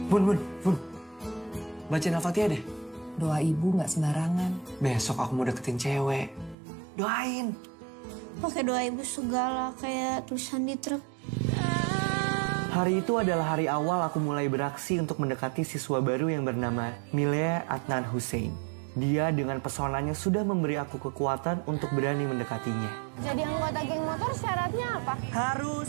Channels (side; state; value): left; drops out; at 6.6 s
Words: Bun. Bacain Al-Fatihah deh. Doa ibu nggak sembarangan. Besok aku mau deketin cewek. Doain. Pakai doa ibu segala kayak tulisan di truk. Hari itu adalah hari awal aku mulai beraksi untuk mendekati siswa baru yang bernama Milea Adnan Hussein. Dia dengan pesonanya sudah memberi aku kekuatan untuk berani mendekatinya. Jadi anggota geng motor syaratnya apa?